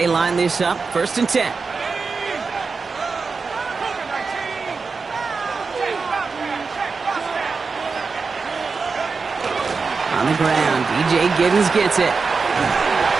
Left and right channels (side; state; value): left; quieter; 4.7 dB